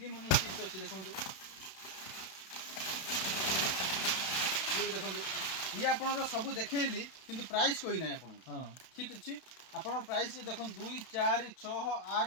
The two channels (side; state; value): right; late; 32 ms